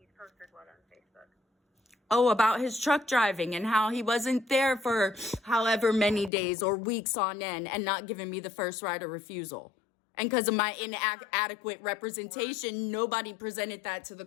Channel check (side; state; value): right; drops out; at 6.3 s